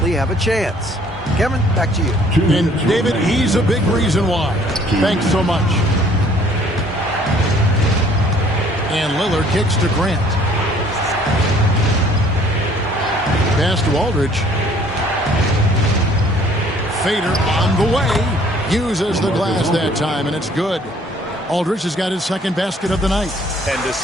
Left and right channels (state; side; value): normal; both; correlation 0.58